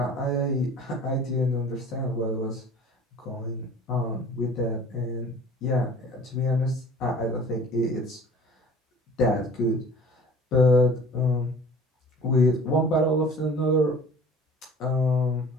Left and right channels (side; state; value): both; normal; correlation 0.45